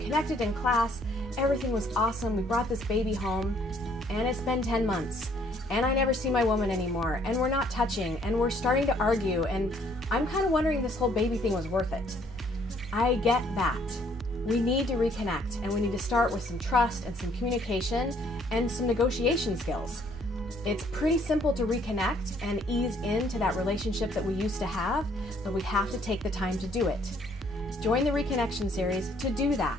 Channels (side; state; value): both; normal; correlation 0.64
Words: in class. Everything was awesome. We brought this baby home and it's been 10 months and I never see my woman anymore and we're not touching and we're starting to argue and I'm kind of wondering if this whole baby thing was worth it. I get that. We need to reconnect and we need to start with some trust and some communication and some negotiation skills. It's pretty simple to reconnect and ease into that relationship that we used to have, but we have to take the time to do it. Join the Reconnection series to do